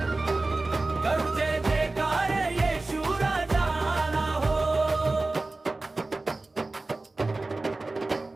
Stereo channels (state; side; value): quieter; left; 3.2 dB